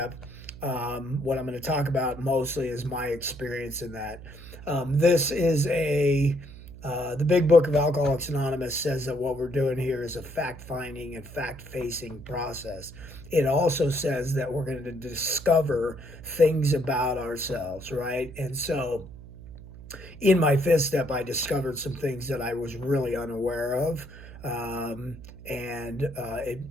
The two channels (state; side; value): noise; right; hum, 16 dB below the sound